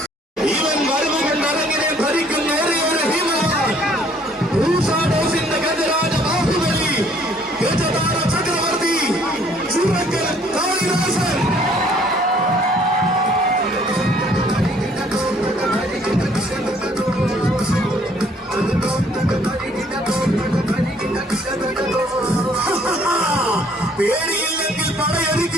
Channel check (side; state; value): both; normal; correlation 0.61